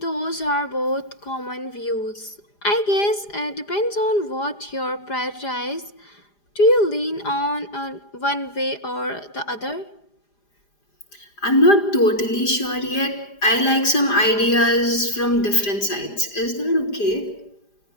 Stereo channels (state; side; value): late; right; 4.9 ms